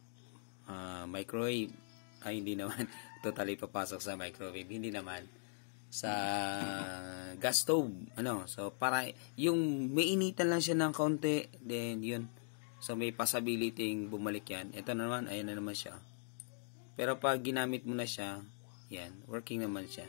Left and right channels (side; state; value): right; silent; digital silence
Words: microwave. Ay, hindi naman. Totally papasok sa microwave. Hindi naman. Sa gas stove. Ano? So, para yung mainitan lang siya ng konti. Then, yun. So, may possibility bumalik yan. Ito naman, ayan na naman siya. Pero pag ginamit mo na siya, yan, working naman siya.